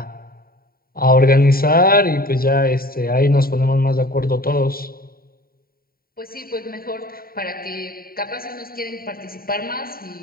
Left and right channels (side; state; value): right; late; 0.43 ms